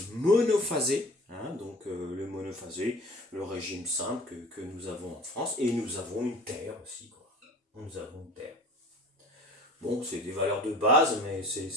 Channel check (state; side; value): normal; both; correlation 0.44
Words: monophasé, hein, donc le monophasé, le régime simple que nous avons en France, et nous avons une terre aussi, quoi. Nous avons une terre. Bon, c'est des valeurs de base, mais